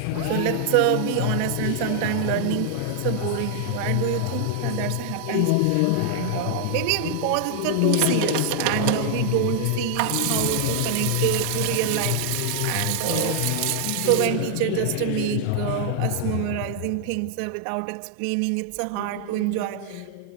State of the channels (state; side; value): different; both; correlation 0.00